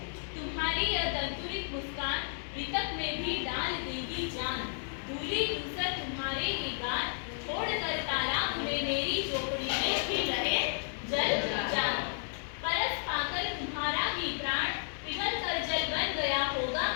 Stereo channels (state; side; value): silent; right; digital silence